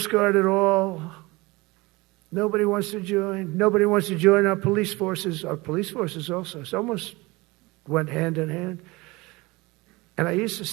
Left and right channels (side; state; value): left; quieter; 23.1 dB